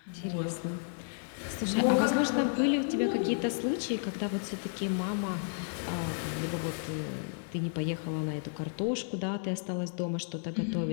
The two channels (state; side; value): silent; right; digital silence